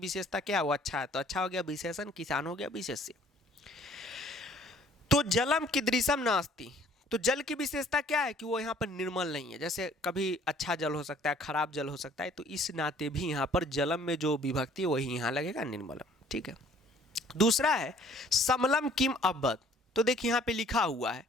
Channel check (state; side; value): normal; both; correlation 0.57